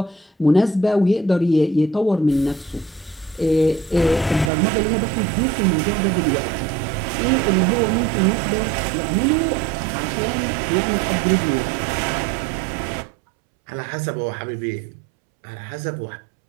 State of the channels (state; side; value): drops out; left; at 4.5 s